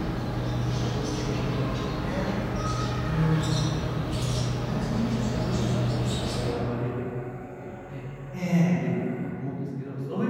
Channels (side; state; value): both; identical; correlation 1.00